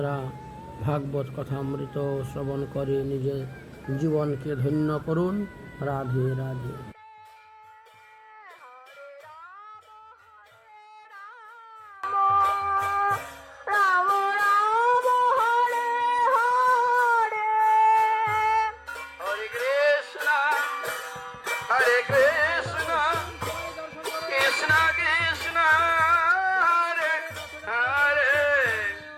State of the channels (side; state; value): both; identical; correlation 1.00